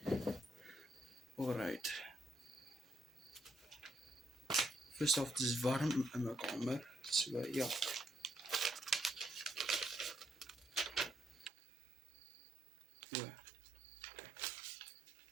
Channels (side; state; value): left; drops out; at 11.5 s